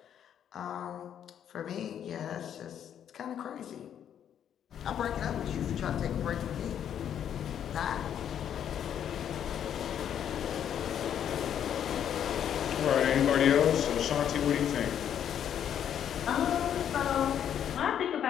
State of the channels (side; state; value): right; quieter; 9.4 dB